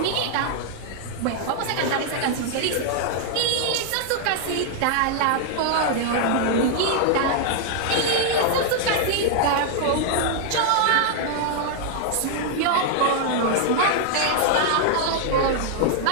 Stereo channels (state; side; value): different; both; correlation 0.00